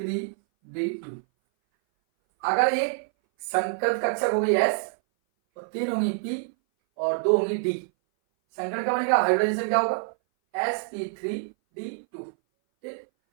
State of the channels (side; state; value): left; silent; 58 dB below the other